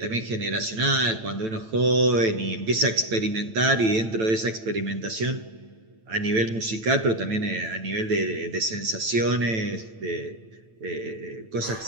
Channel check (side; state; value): left; late; 9.0 ms